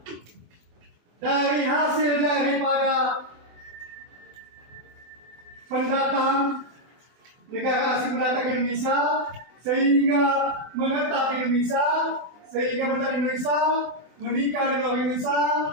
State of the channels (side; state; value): left; late; 24 ms